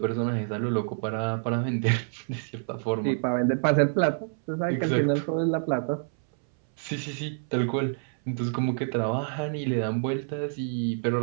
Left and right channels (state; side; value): silent; left; 60 dB below the other